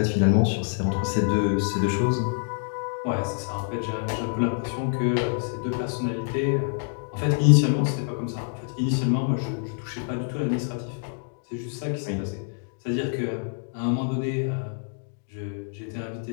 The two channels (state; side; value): silent; right; digital silence